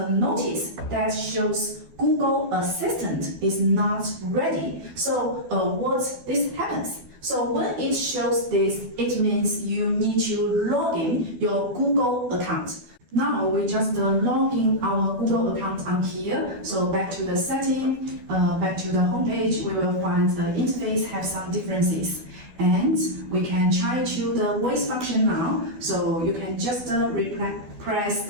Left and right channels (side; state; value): left; late; 12 ms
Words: notice that shows Google Assistant is not ready. So what this happens? So when it shows this, it means you need to log in your Google account. Now we just log in our Google account on here. So back to the setting, back to the homepage, we will find the interface have some differences. And we can try to the voice function now. So you can just press